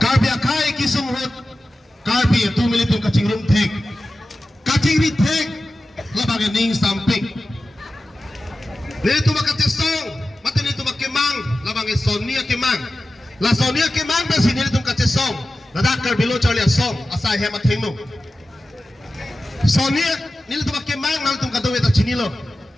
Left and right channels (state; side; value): normal; both; correlation 0.94